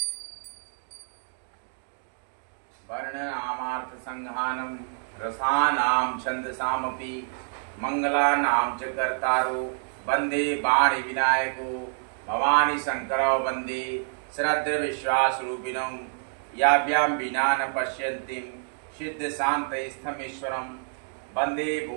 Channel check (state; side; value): silent; left; digital silence